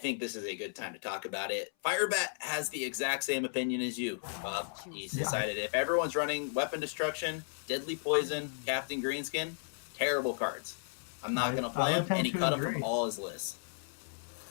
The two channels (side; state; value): right; silent; 55 dB below the other